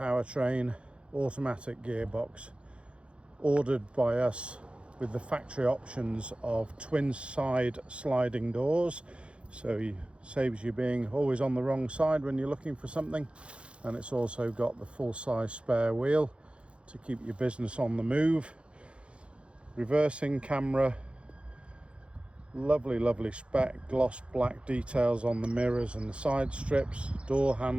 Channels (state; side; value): late; left; 0.059 ms